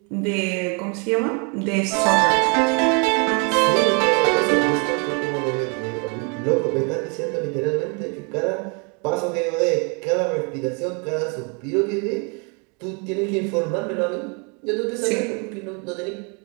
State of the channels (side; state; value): left; quieter; 34.7 dB